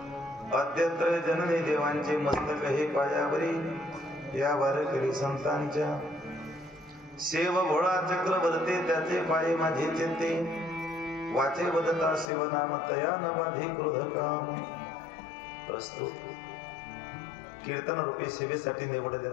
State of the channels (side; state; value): right; drops out; at 12.3 s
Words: अद्यत्र जननी देवांचे मस्तक हे पायावरी या वारकरी संतांच्या सेव भोळा चक्रवर्ती त्याचे पाये माझे चित्ते वाचे वदता शिवनाम तया न बाधे क्रोध काम प्रस्तुत कीर्तन रूपी सेवेसाठी